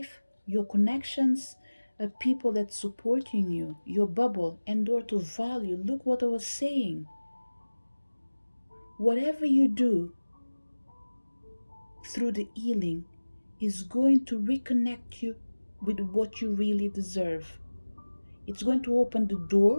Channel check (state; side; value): inverted; both; correlation -1.00